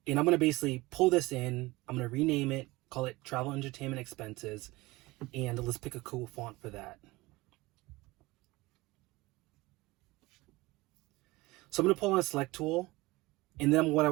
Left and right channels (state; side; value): quieter; left; 21.1 dB